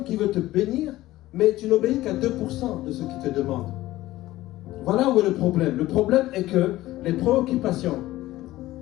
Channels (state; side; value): quieter; right; 16.4 dB